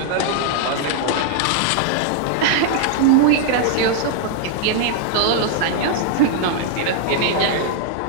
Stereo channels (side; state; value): both; different; correlation 0.00